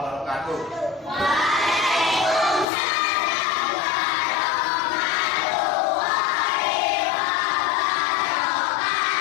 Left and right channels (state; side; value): drops out; right; at 2.7 s